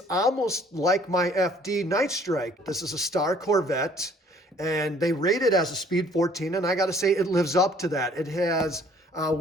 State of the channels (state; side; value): normal; both; correlation 0.57